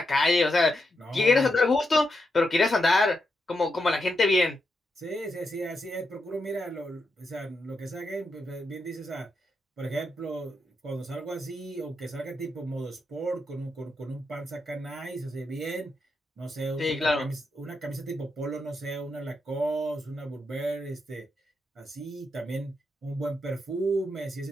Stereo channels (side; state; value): both; normal; correlation 0.84